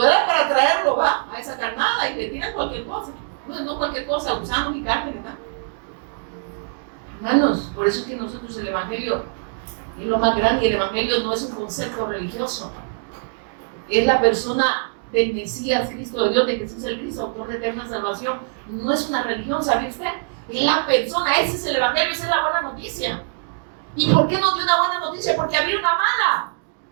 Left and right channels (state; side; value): silent; left; digital silence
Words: eras para traerlo, va, a esa carnada y le tiran cualquier cosa. No cualquier cosa, gusanos y carne, ¿verdad? Hermanos, por eso es que nosotros el Evangelio es lo más grande, y el Evangelio no es un concepto religioso. Es la persona del Mesías, Cristo de Dios, de Jesús el Cristo, autor de eterna salvación. No es una religión, ¿sabe usted? Es la persona, ese es el Evangelio, esa es la buena noticia. ¿Y por qué nos dio una buena noticia? Porque había una mala.